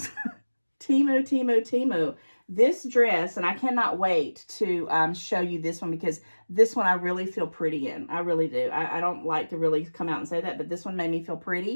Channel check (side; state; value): both; inverted; correlation -1.00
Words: Temu. This dress, and I cannot wait to show you this one, because this one I really feel pretty in. I really do. I don't like to really come out and say that, but this one made me feel